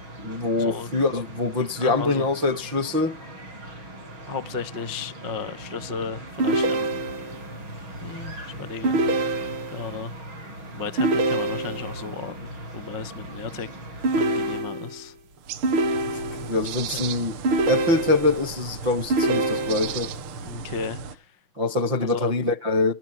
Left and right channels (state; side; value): late; left; 5.9 ms